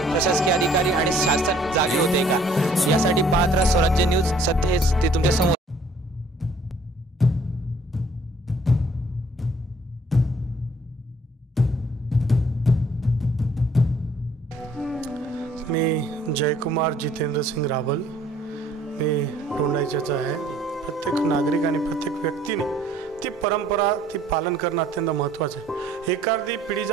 प्रशासकीय अधिकारी आणि शासन जागे होते का? यासाठी पाहत राहा स्वराज्य न्यूज। सध्या हेच ते तुमच्या समोर। मी जयकुमार जितेंद्र सिंग रावल, मी टोंडाईचाच आहे। प्रत्येक नागरिक आणि प्रत्येक व्यक्तीने ती परंपरा ती पालन करणं अत्यंत महत्त्वाचं आहे। एखादी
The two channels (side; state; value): both; normal; correlation 0.59